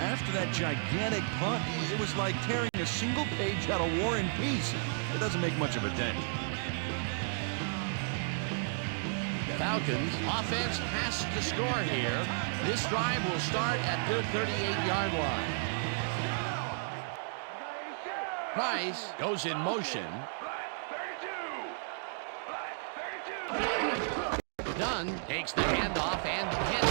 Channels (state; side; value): silent; left; digital silence